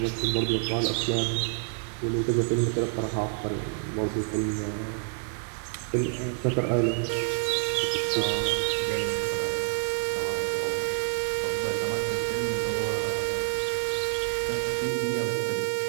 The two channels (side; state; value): left; silent; 59 dB below the other